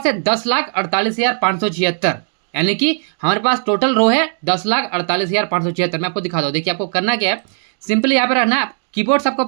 है 10,48,576, यानी कि हमारे पास टोटल रो है 10,48,576। मैं आपको दिखा दूँ। देखिए, आपको करना क्या है, सिंपली यहाँ पे रहना है, कीबोर्ड से आपको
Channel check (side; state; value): left; silent; digital silence